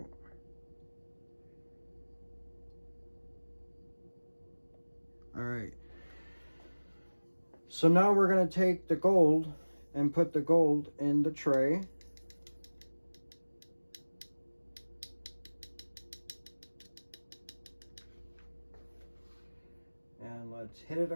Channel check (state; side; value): inverted; both; correlation -1.00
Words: All right. So now we're going to take the gold and put the gold in the tray. hit it